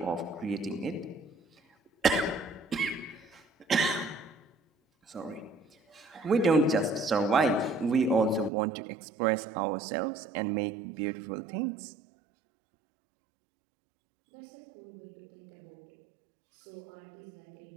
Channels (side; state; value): left; drops out; at 8.5 s